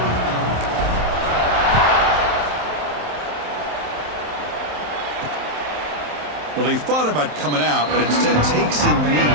Well, he thought about coming out, but instead takes a knee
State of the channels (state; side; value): late; left; 27 ms